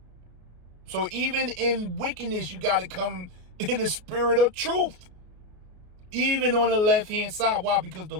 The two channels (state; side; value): late; left; 33 ms